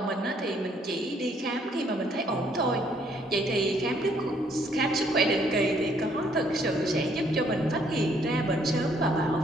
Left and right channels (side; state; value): both; normal; correlation 0.67